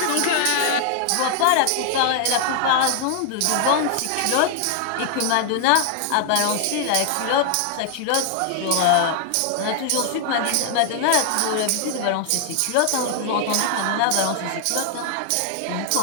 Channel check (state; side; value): different; both; correlation 0.00